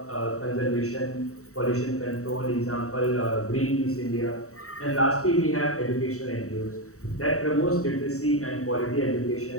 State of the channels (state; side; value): late; right; 0.64 ms